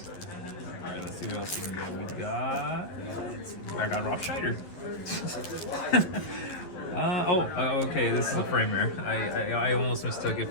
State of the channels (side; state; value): right; late; 11 ms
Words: Alright, let's see what else we can get. I got Rob Schneider. Okay, this is a frame rare. I almost mistook it